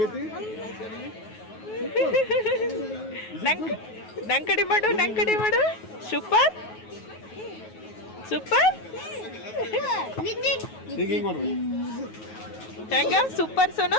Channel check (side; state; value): right; late; 9.4 ms